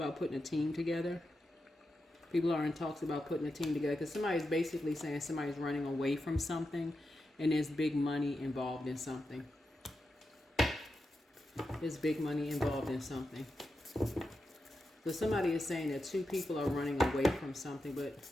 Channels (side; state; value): both; normal; correlation 0.89